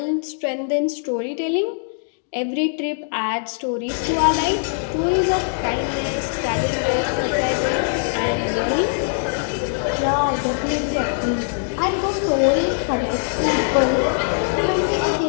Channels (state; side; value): silent; right; digital silence